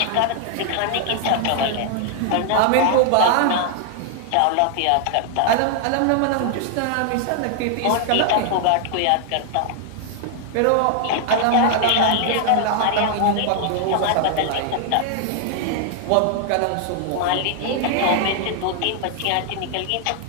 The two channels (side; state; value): both; different; correlation 0.00